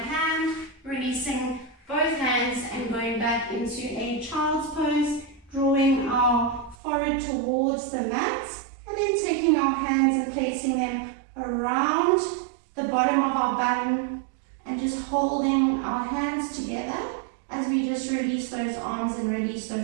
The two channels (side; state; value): left; drops out; at 6.8 s